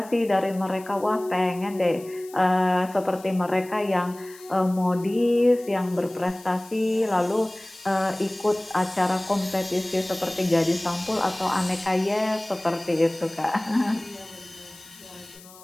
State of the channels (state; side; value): noise; left; hiss, 21 dB below the sound